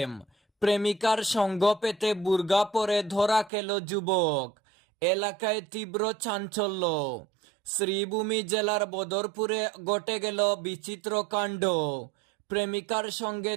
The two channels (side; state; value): left; drops out; at 3.5 s